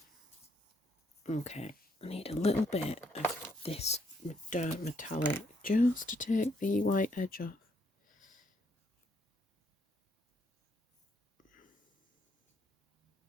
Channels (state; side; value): normal; both; correlation 0.73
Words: Okay, I need a little bit of this dark metallic just to take the white edge off.